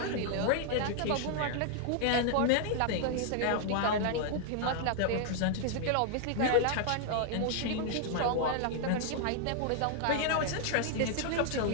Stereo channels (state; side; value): different; both; correlation -0.01